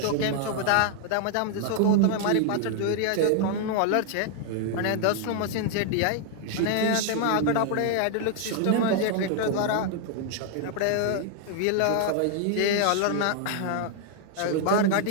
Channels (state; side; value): different; both; correlation 0.00